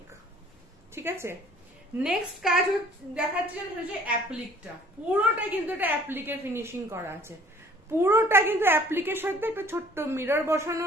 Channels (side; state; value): both; normal; correlation 0.54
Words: ঠিক আছে। নেক্সট কাজ দেখাচ্ছে হচ্ছে অ্যাপ্লিকটা, পুরোটা কিন্তু এটা অ্যাপ্লিকের ফিনিশিং করা আছে, পুরোটা কিন্তু অ্যাপ্লিকের সাথে একটা ছোট্ট মিরর বসানো